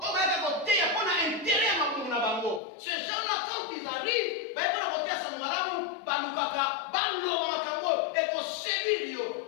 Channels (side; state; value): right; drops out; at 2.6 s